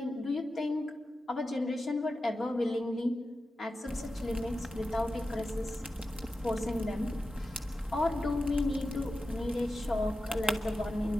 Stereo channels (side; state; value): both; normal; correlation 0.92